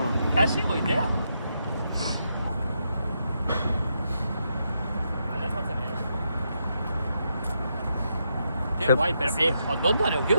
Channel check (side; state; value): both; inverted; correlation -0.81